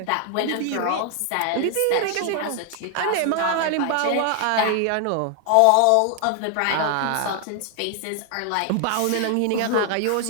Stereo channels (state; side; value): different; both; correlation 0.00